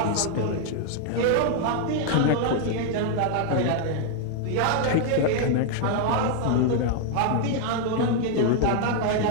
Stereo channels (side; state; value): both; different; correlation 0.00